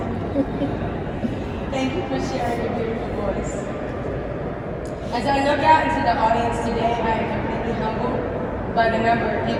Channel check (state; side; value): identical; both; correlation 1.00